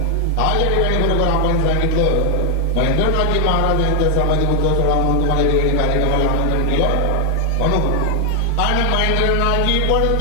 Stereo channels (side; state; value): both; different; correlation 0.00